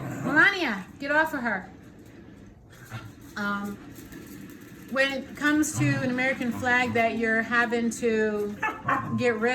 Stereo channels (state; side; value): identical; both; correlation 1.00